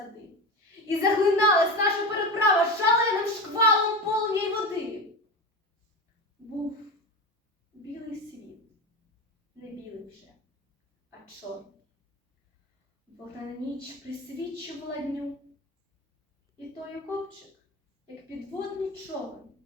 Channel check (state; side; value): normal; both; correlation 0.23